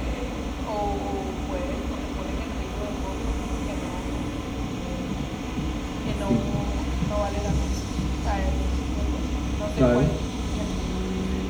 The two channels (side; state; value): both; identical; correlation 1.00